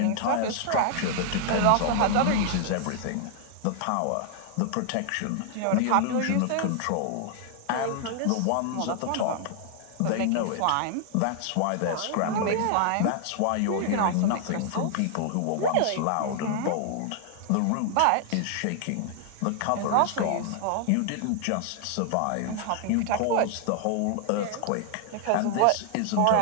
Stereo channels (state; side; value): different; both; correlation 0.00